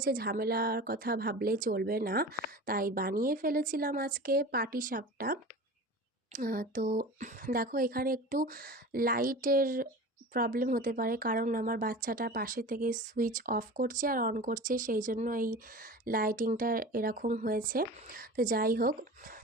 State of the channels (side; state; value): both; normal; correlation 0.35